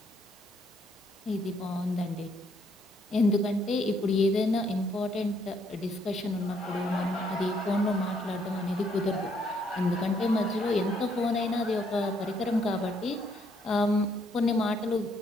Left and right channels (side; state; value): both; normal; correlation 0.70